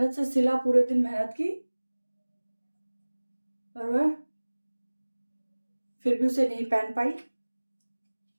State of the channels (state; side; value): inverted; both; correlation -1.00